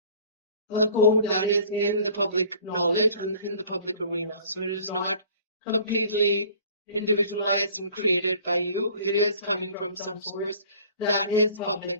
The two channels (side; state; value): both; inverted; correlation -0.51